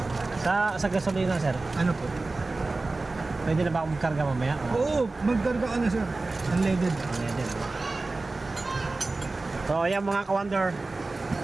Sa gasolina, sir. Ano po? Pwede na ba akong magkarga mamaya? Oo, magkarga ka na, sir. Unleaded. Unleaded. So, ayan mga ka-wonder.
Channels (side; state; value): left; quieter; 3.4 dB